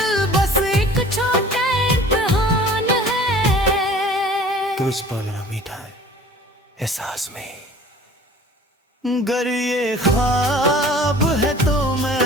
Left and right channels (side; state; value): both; normal; correlation 0.47